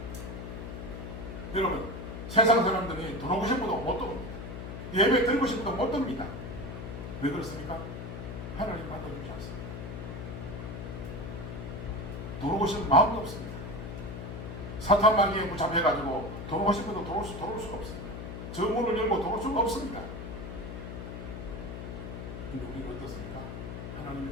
여러분, 세상 사람들이 들어오고 싶어도 못 들어옵니다. 예배 드리고 싶어도 못 듭니다. 왜 그렇습니까? 하나님 받아주지 않습니다. 들어오고 싶은 마음도 없습니다. 사탄 마귀에 붙잡혀가지고 들어오고 싶어도 들어올 수가 없습니다. 저 문을 열고 들어올 수가 없습니다. 근데 우리는 어떻습니까?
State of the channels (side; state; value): left; noise; hum, 8 dB below the sound